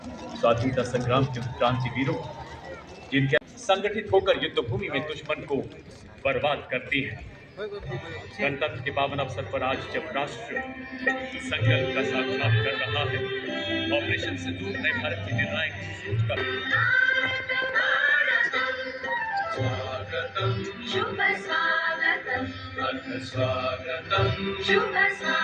स्वाधीनता संग्राम के क्रांतिवीरों जिनके संगठित होकर युद्ध भूमि में दुश्मन को बर्बाद करती है। गणतंत्र के पावन अवसर पर आज जब राष्ट्र संकल्प का साक्षात कर रहा है, ऑपरेशन सिंदूर नए भारत की निर्णायक सोच का शुभ स्वागतम अथ स्वागतम शुभ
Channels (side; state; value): both; identical; correlation 1.00